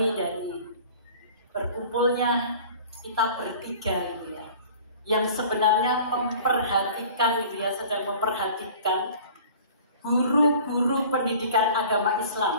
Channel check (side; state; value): both; inverted; correlation -0.45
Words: dari berkumpulnya kita bertiga gitu ya, yang sebenarnya memperhatikan gitu ya, sedang memperhatikan guru-guru pendidikan agama